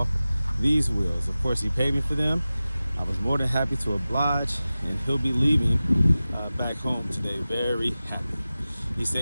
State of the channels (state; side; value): inverted; both; correlation -0.96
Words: these wheels. Of course, he paid me for them. I was more than happy to oblige, and he'll be leaving back home today very happy. He